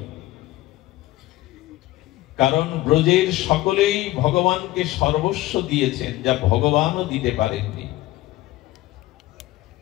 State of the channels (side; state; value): right; quieter; 17.1 dB